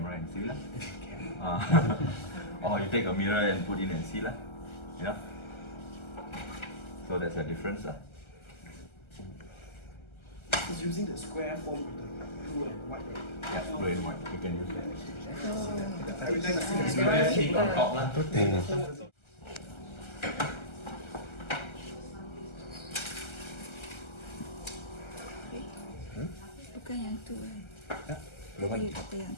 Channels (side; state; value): right; late; 1.3 ms